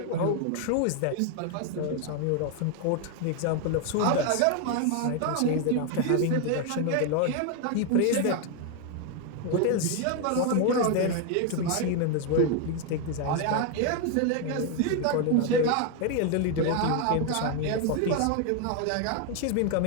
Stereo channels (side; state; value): both; different; correlation 0.01